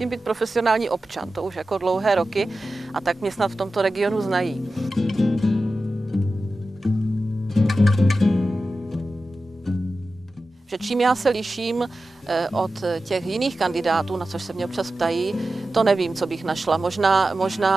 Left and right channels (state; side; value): normal; both; correlation 0.93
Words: být profesionální občan. To už jako dlouhé roky a tak mě snad v tomto regionu znají. Že čím já se liším od těch jiných kandidátů, na což se mě občas ptají, to nevím, co bych našla.